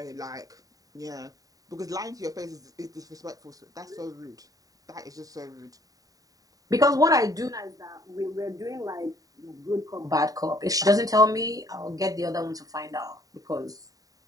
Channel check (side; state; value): left; late; 0.18 ms